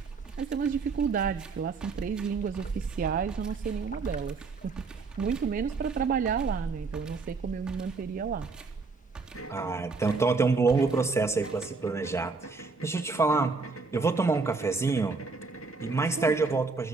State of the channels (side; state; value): left; quieter; 4.3 dB